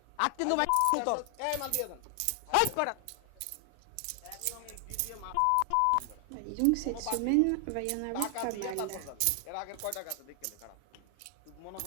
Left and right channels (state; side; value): different; both; correlation 0.00